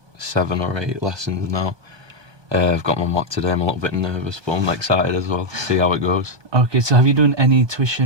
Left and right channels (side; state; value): left; late; 1.2 ms